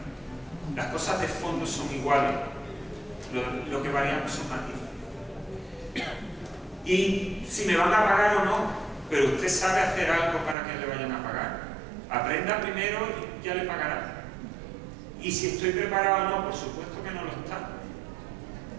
Las cosas de fondo son iguales, lo que variamos son matices. Y si me van a pagar o no, pero usted sabe hacer algo para que le vayan a pagar. Aprenda primero y ya le pagará. Y si estoy preparado o no, por supuesto que no lo está.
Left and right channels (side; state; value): left; drops out; at 10.6 s